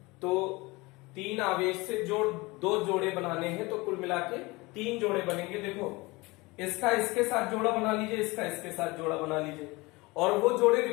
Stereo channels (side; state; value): right; quieter; 23.4 dB